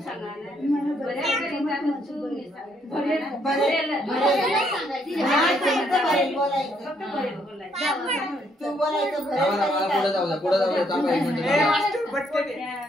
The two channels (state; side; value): normal; both; correlation 0.71